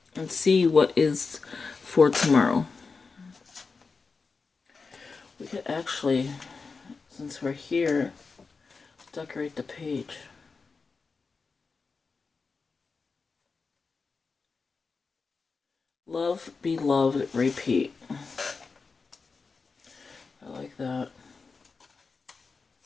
and see what is for tomorrow. We could actually, since we're here, decorate the page. Love, be loved, repeat. I like that.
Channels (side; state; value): right; quieter; 4.6 dB